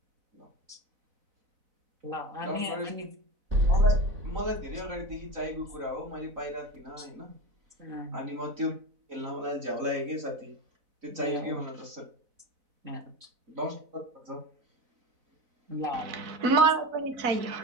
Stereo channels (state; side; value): late; left; 4.0 ms